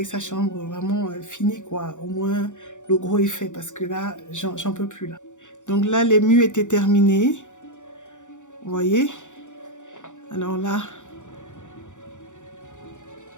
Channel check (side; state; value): right; late; 0.86 ms